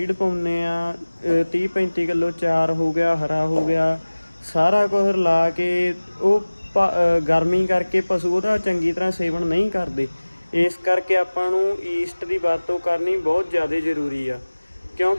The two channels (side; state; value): both; inverted; correlation -1.00